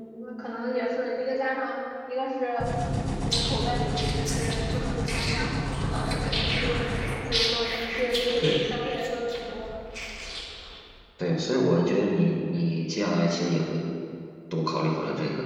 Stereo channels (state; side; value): identical; both; correlation 1.00